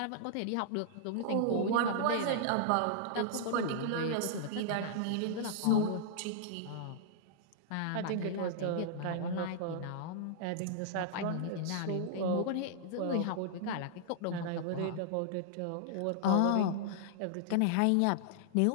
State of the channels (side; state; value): both; different; correlation -0.01